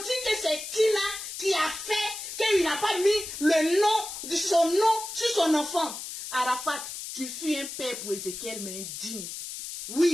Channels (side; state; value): left; noise; hiss, 8 dB below the sound